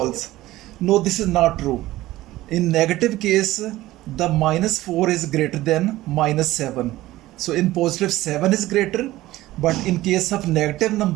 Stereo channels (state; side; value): quieter; left; 16.5 dB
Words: No, this is not true. In negative case, the -4 is greater than -7. So in positive 7 is greater, but in case of negative